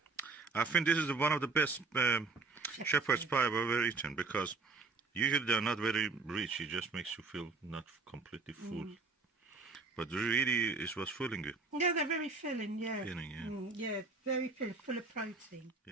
I think this is one of the best shepherd's pie I've ever eaten, because Usually they're not very rich. It just makes you feel not completely full. But really, it was filling you. Yeah, they're very filling, yeah. Filling, yeah. Yeah, very filling, full of protein.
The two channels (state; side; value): quieter; left; 4.1 dB